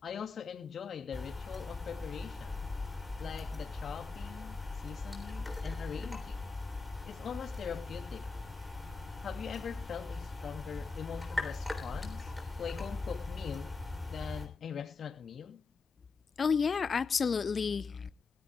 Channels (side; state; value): right; quieter; 4.6 dB